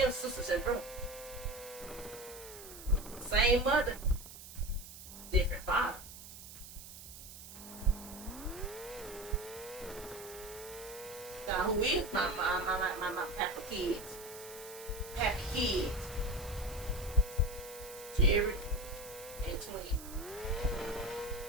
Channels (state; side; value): noise; right; hiss, 14 dB below the sound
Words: sisters and brothers. Same mother, different father. Now who is my Papa kids? Happy kids. Jared and twin.